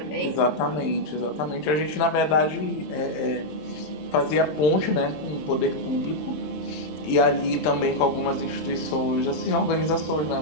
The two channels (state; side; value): late; right; 27 ms